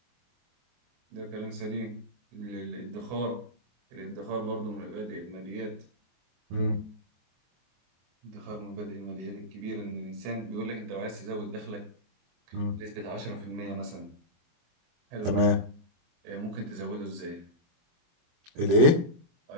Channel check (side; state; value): left; late; 23 ms